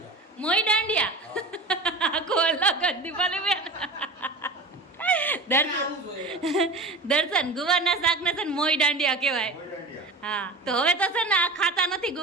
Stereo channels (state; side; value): quieter; left; 3.0 dB